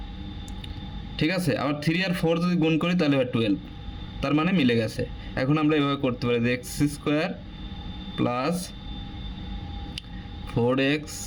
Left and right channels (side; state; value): both; identical; correlation 1.00